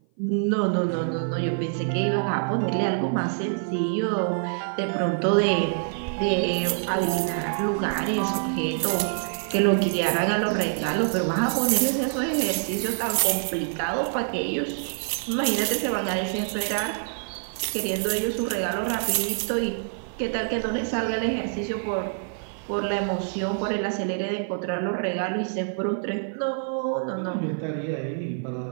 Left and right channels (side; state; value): left; silent; 55 dB below the other